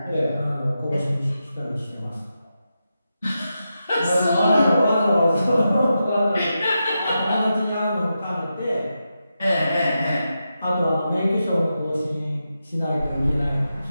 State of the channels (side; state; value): both; inverted; correlation -0.88